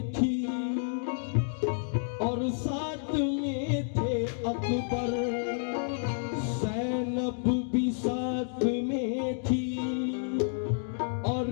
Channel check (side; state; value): right; silent; digital silence